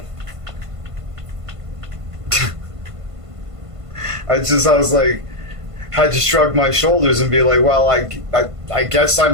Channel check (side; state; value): left; late; 1.5 ms